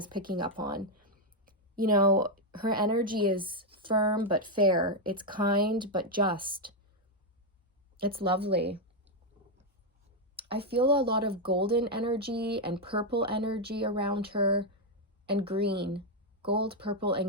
picking up on. You know, her energy is firm but fair. It's kind but just. It's lovely. I feel a lot of golden energy and purple energy around her, and green. Gold, purple,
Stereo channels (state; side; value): normal; both; correlation 0.02